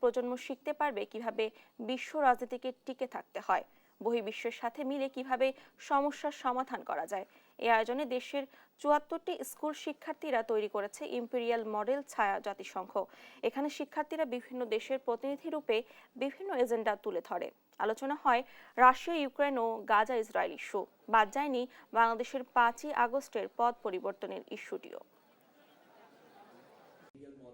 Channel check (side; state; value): both; identical; correlation 1.00